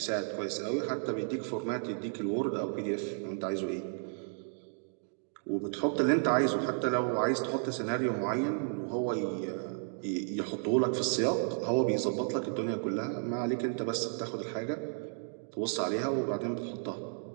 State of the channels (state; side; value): silent; left; 56 dB below the other